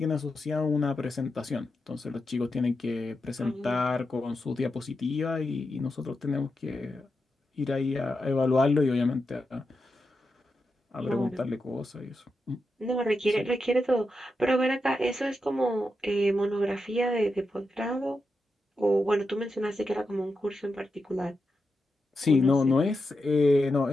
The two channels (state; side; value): normal; both; correlation 0.88